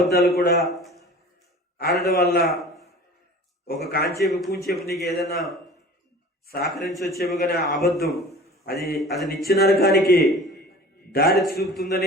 కూడా ఆడడం వల్ల ఒక కాంచేపు కూంచేపు నీకు ఏదైనా సహకరించి వచ్చేమో కానీ అబద్ధం అది నిత్య నరకానికి దారి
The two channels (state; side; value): normal; both; correlation 0.42